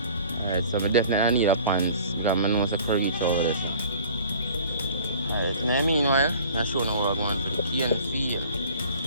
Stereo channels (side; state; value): both; inverted; correlation -0.48